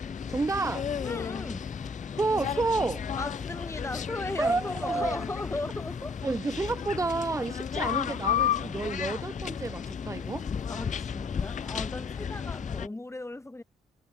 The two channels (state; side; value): normal; both; correlation 0.61